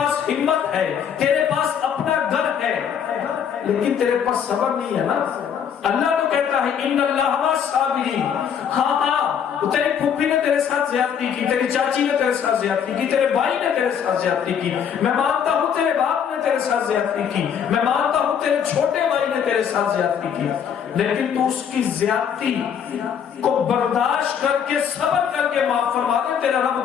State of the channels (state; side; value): quieter; right; 8.0 dB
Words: ہمت ہے، تیرے پاس اپنا گھر ہے، لیکن تیرے پاس صبر نہیں ہے نا۔ اللہ تو کہتا ہے ان اللہ مع الصابرین۔ ہاں تیری پھوپھی نے تیرے ساتھ زیادتی کی، تیری چاچی نے تیرے ساتھ زیادتی کی، تیرے بھائی نے تیرے ساتھ زیادتی کی، میں مانتا ہوں تیرے باپ نے تیرے ساتھ زیادتی کی، میں مانتا ہوں تیرے چھوٹے بھائی نے تیرے ساتھ زیادتی کی، لیکن تو اس کی زیادتی کو برداشت کر کے صبر کر کے معاف فرما دے، تیرا رب